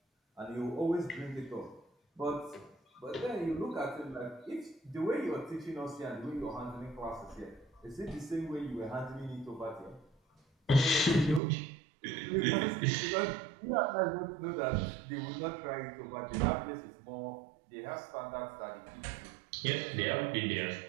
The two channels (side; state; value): left; drops out; at 11.4 s